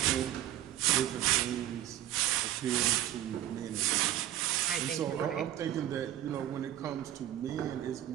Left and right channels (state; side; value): quieter; left; 12.5 dB